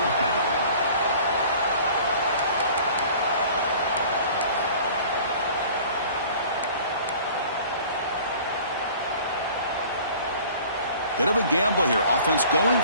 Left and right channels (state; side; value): inverted; both; correlation -0.47